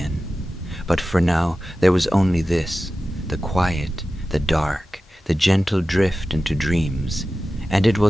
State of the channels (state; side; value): normal; both; correlation 0.94